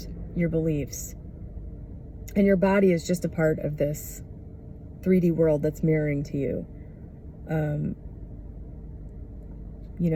your beliefs, and your body is just a part of this 3D world that's mirroring to you, you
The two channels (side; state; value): both; identical; correlation 1.00